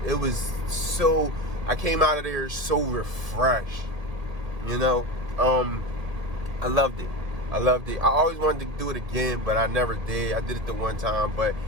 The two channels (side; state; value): left; late; 1.7 ms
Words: so, I came out of there so refreshed, you know. I loved it. I always wanted to do it again, but I never did. I did it the one time, but